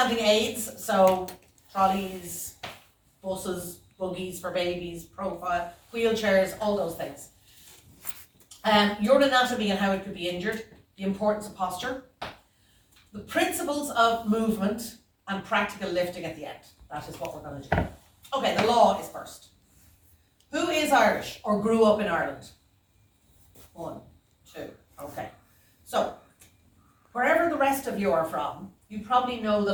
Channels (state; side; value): identical; both; correlation 1.00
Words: aids, so trolleys, buses, buggies for babies, profile, wheelchairs, all those things. Your anatomy and how it could be injured, the importance of posture, the principles of movement, and practical lifting at the end. That is what we're going to do. Okay, the law is first. Who is Irish or grew up in Ireland? 1, 2, okay. So, wherever the rest of you are from, you probably know the